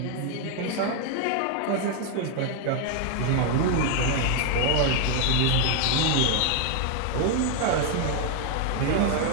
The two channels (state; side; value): different; both; correlation 0.01